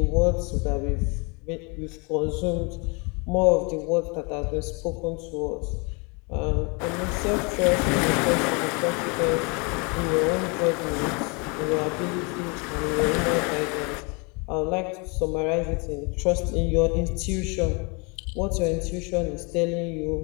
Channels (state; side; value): quieter; right; 31.4 dB